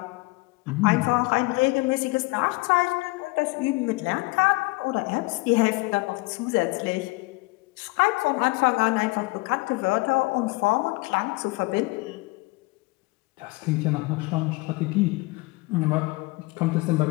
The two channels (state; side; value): quieter; right; 24.2 dB